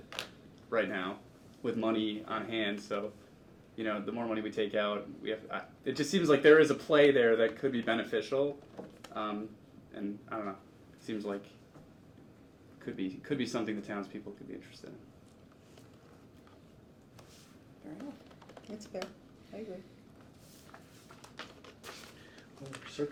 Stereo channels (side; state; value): both; identical; correlation 1.00